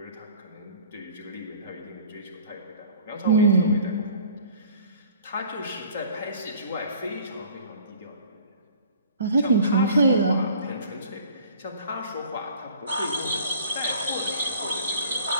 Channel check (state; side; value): inverted; both; correlation -0.49